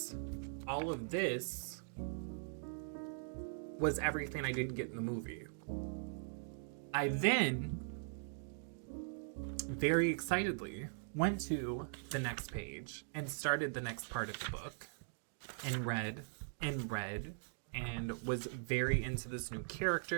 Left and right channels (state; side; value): silent; left; digital silence